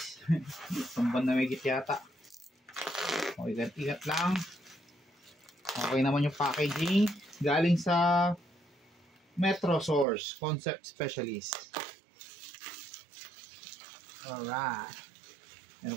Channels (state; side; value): drops out; left; at 10.1 s